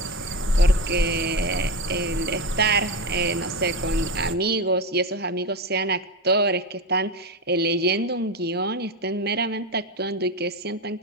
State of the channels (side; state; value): both; normal; correlation 0.17